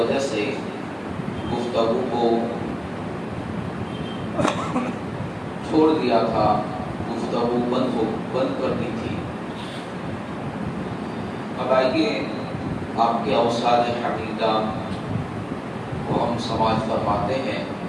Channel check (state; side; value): identical; both; correlation 1.00